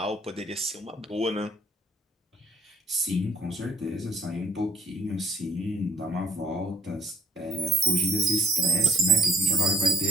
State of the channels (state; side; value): normal; both; correlation 0.61